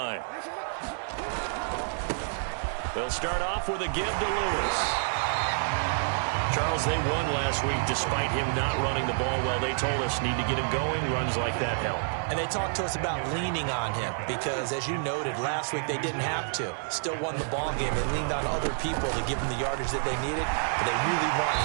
They'll start off with a give to Lewis. Charles, they won last week despite him not running the ball well. They told us need to get him going. Runs like that help. And they talked to us about leaning on him because, as you noted, last week they didn't have to. Still won the ball game. They leaned on other people to give them the yardage that they needed, but they really want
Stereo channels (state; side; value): silent; left; 59 dB below the other